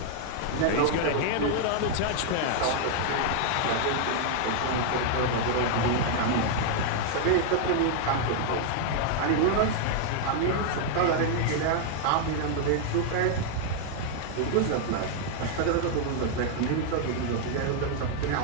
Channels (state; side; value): different; both; correlation 0.00